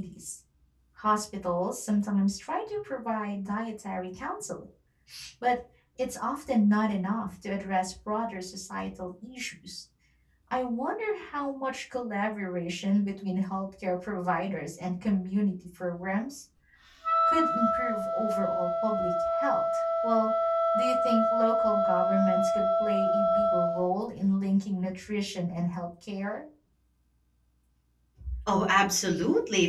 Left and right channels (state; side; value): identical; both; correlation 1.00